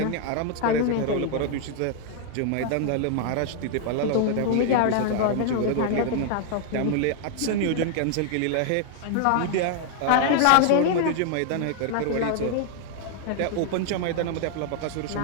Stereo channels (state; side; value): different; both; correlation 0.00